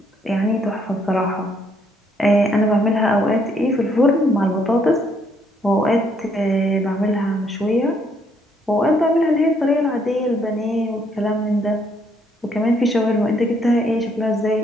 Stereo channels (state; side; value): normal; both; correlation 0.69